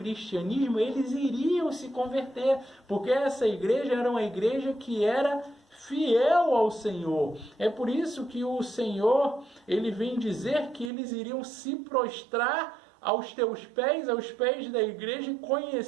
eles iriam se converter, porque essa igreja era uma igreja que era fiel ao Senhor. É por isso que o Senhor, ele vem dizer que eles iriam se prostrar aos teus pés, aos pés da igreja, e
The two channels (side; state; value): left; drops out; at 10.9 s